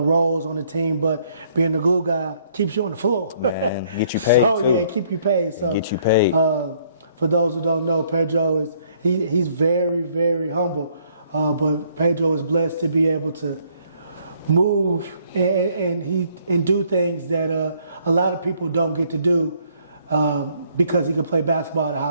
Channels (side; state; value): both; inverted; correlation -0.65